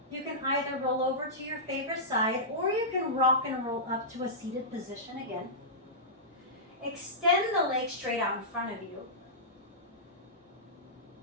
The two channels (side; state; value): both; normal; correlation -0.16